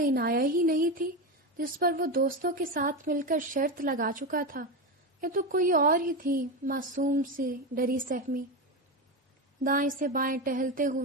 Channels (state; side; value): normal; both; correlation 0.15